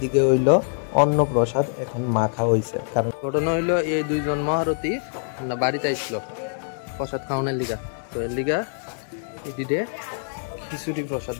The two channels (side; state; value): right; silent; digital silence